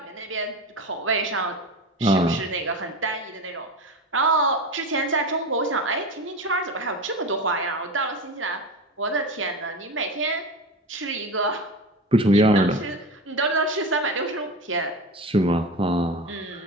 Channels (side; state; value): both; normal; correlation 0.25